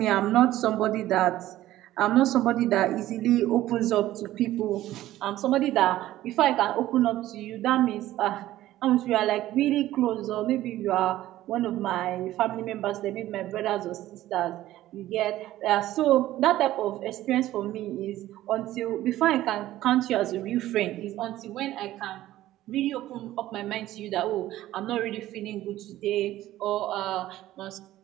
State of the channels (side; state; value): left; quieter; 14.7 dB